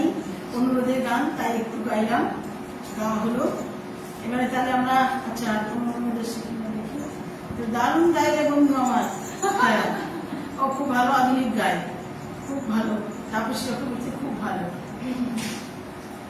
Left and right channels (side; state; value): both; identical; correlation 1.00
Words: অনুরোধের গান, তাই একটু গাইলাম, গাওয়া হলো। এবারে তাহলে আমরা, আচ্ছা অনুরোধের শিখে দেখি। দারুণ গাইলে বন্ধু আমার। হ্যাঁ, ও খুব ভালো আধুনিক গায়, খুব ভালো। তাপসী চক্রবর্তী খুব ভালো।